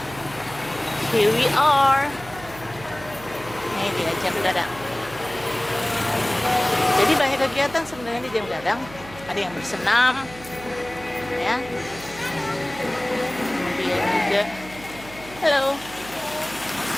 here we are. Ini dia Jam Gadang. Jadi banyak kegiatan sebenarnya di Jam Gadang. Ada yang bersenam, ya. Kemudian juga, halo.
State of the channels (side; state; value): right; noise; hum, 17 dB below the sound